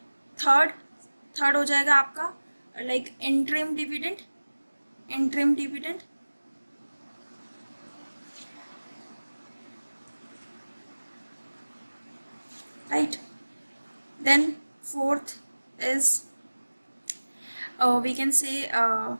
थर्ड हो जाएगा आपका like interim dividend, right. Then fourth is we can say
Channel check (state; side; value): inverted; both; correlation -1.00